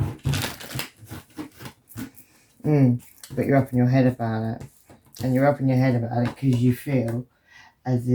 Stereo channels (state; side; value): identical; both; correlation 1.00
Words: But you're up in your head about it, and you're up in your head about it because you feel as